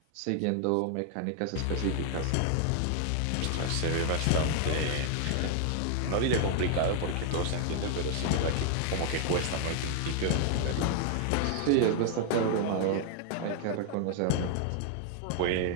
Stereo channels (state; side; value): different; both; correlation 0.00